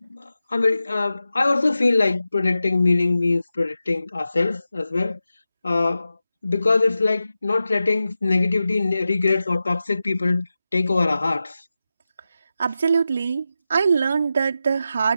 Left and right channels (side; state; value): both; inverted; correlation -0.92